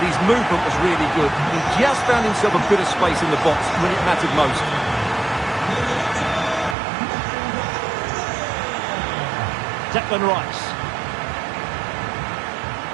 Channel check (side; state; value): left; drops out; at 6.8 s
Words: his movement was really good. He just found himself a bit of space in the box when it mattered most. Declan Rice.